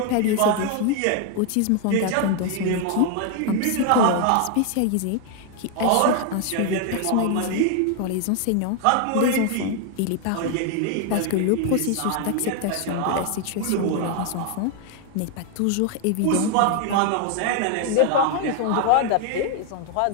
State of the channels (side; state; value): both; different; correlation 0.00